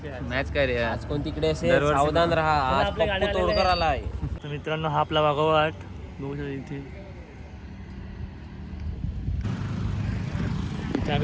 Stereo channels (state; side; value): identical; both; correlation 1.00